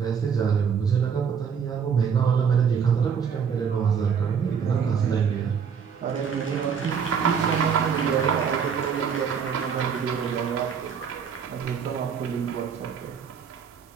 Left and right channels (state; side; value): quieter; left; 6.8 dB